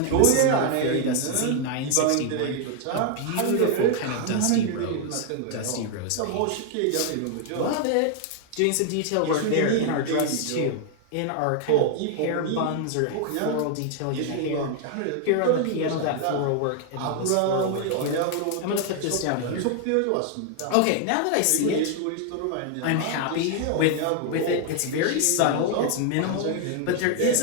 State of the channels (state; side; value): different; both; correlation 0.00